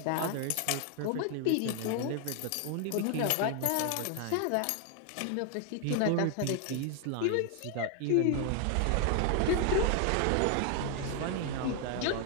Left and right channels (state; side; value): different; both; correlation 0.00